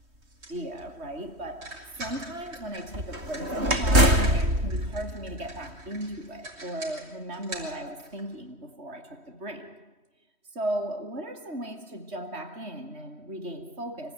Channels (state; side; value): late; left; 3.1 ms